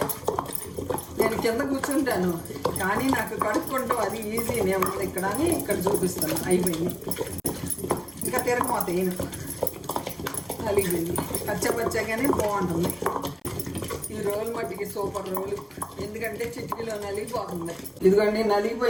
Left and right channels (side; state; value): both; identical; correlation 1.00